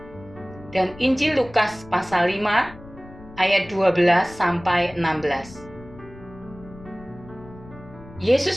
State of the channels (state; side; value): noise; left; rumble, 19 dB below the sound